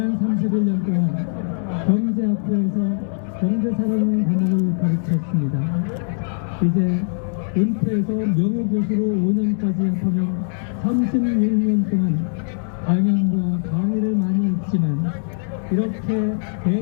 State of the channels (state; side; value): silent; right; digital silence